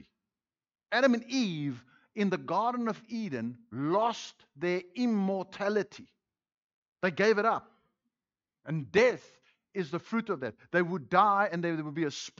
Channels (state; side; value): identical; both; correlation 1.00